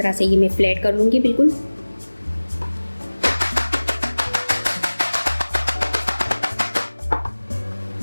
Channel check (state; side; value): inverted; both; correlation -1.00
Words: से ये मैं फ्लैट कर लूँगी बिल्कुल।